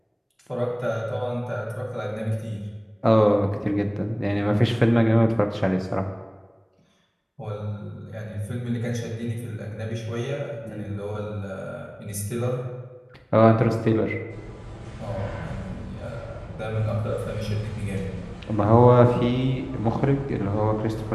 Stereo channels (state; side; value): identical; both; correlation 1.00